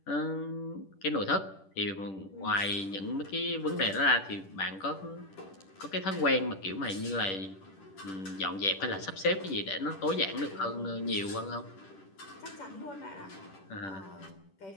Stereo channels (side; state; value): right; late; 10 ms